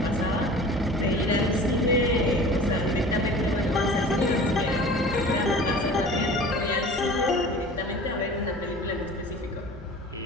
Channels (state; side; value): normal; both; correlation 0.42